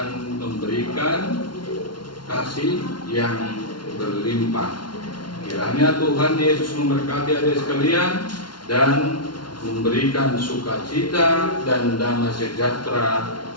memberikan kasih yang berlimpah. Kiranya Tuhan Yesus memberkati adik sekalian dan memberikan sukacita dan damai sejahtera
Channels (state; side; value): late; right; 0.71 ms